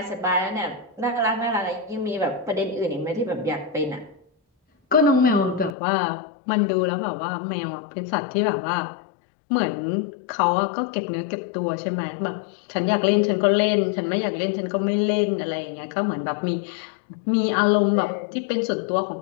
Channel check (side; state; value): right; drops out; at 5.8 s